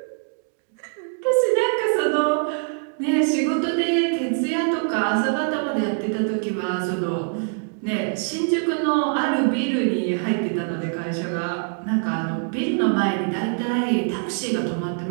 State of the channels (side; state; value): left; silent; 56 dB below the other